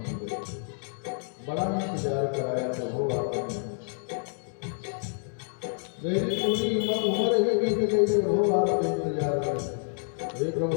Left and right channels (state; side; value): silent; right; 59 dB below the other